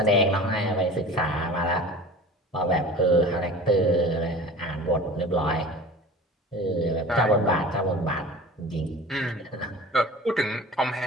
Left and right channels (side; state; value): both; normal; correlation 0.39